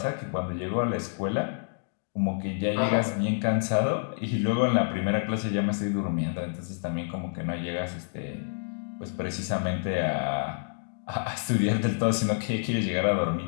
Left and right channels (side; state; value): right; silent; digital silence